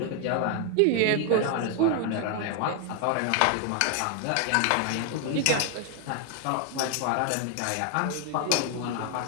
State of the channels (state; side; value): different; both; correlation 0.00